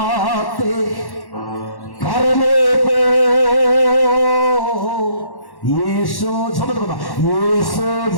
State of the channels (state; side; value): late; right; 1.1 ms